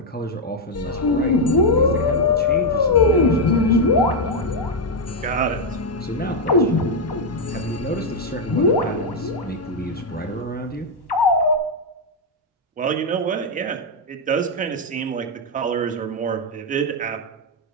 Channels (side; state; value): both; normal; correlation 0.02